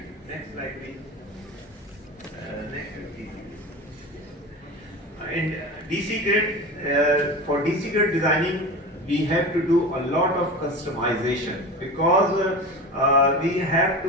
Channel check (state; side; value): normal; both; correlation 0.30